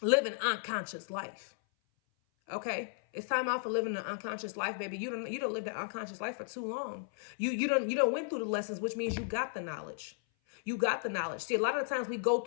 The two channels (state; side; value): silent; right; 55 dB below the other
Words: live an unconscious life. Okay, it's time out for living an unconscious life, baby. You don't live the unconscious life for too long. You don't went through the lessons, which means you got the knowledge. You got the knowledge. See, a lot of the times we go